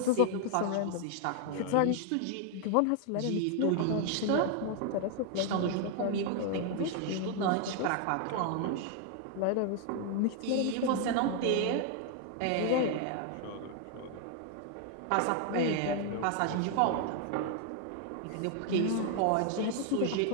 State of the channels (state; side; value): different; both; correlation 0.00